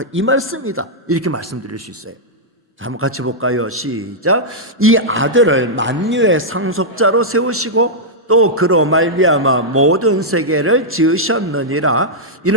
이 말씀이다, 이렇게 말씀드릴 수 있어요. 자, 한번 같이 볼까요? 시작. 이 아들을 만유의 상속자로 세우시고 또 그로 말미암아 모든 세계를 지으셨느니라.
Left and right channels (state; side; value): normal; both; correlation -0.09